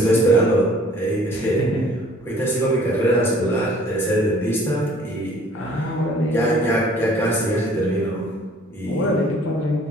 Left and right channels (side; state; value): both; normal; correlation 0.54